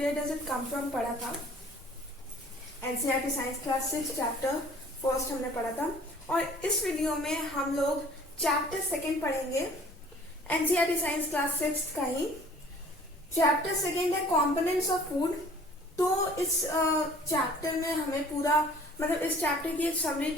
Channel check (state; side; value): normal; both; correlation 0.52